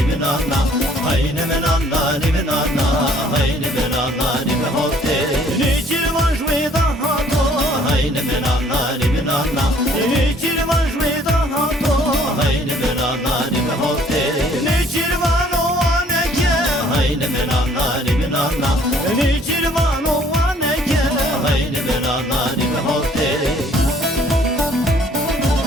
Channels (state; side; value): normal; both; correlation 0.59